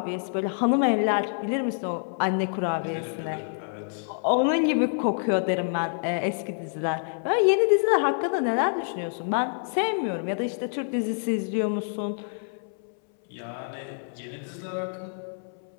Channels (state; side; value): silent; right; 60 dB below the other